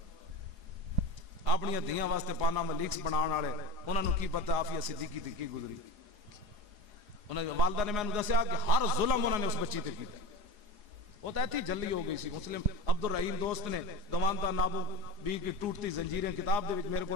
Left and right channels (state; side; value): late; left; 4.8 ms